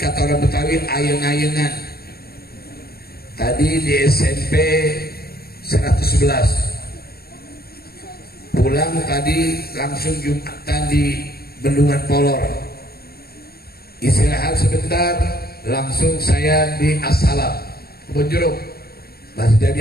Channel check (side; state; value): right; late; 0.45 ms